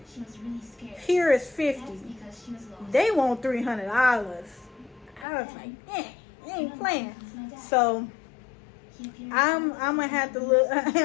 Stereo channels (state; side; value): drops out; right; at 5.2 s